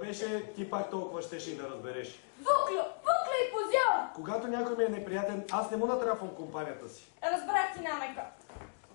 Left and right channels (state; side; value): silent; right; digital silence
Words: ти пак толкова щеше и да разбереш. Вуклю и позор! Когато някой ми е неприятен, аз не му натрапвам компанията си. Разбрах ти намека.